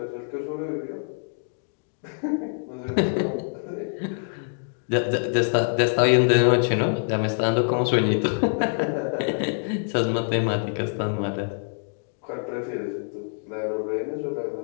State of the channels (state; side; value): silent; right; digital silence